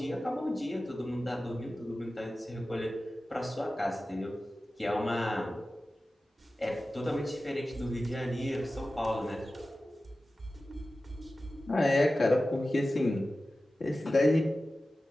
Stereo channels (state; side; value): normal; both; correlation 0.95